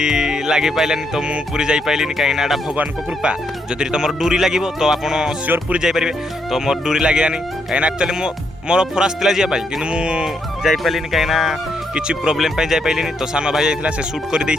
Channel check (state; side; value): normal; both; correlation 0.76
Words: लागी पाइलानी तो मु पूरी जाई पाइलिनी कहीं ना भगवान को कृपा जदि तुम डोरी लागिबो तो आपण श्योर पूरी जाई परिबे। तो मोर डोरी लागियानी कहीं ना एक्चुअली मोर फरास तिला जिया पाई किंतु मु जाई पाइलिनी कहीं ना किछि प्रॉब्लम पाई जाई पाइलिनी। तो सानो भाई जाइथिला से शूट कर